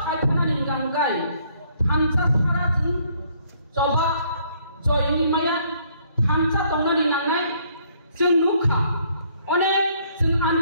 खायथाना निगांगाय थानसा सारा जों जबा जयनि माया थानसा दंनानि नांनाय जों नुखा अनेक जों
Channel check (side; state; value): both; inverted; correlation -0.66